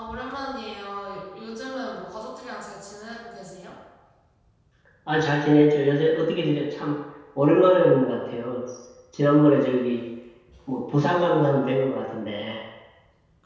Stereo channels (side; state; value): both; identical; correlation 1.00